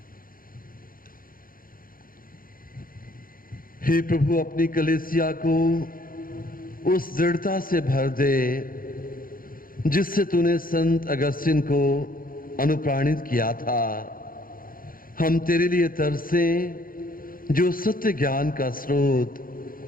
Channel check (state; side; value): late; right; 0.41 ms